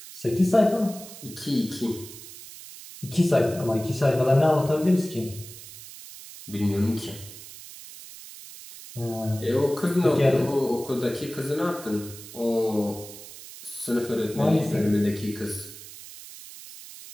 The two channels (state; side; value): noise; right; hiss, 15 dB below the sound